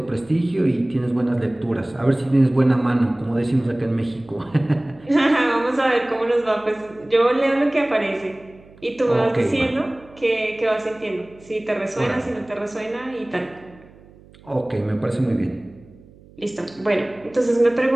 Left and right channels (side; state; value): right; noise; hum, 25 dB below the sound